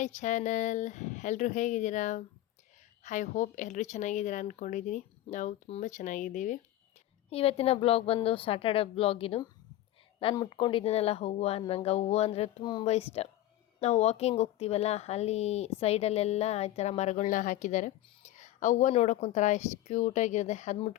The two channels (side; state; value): right; quieter; 14.0 dB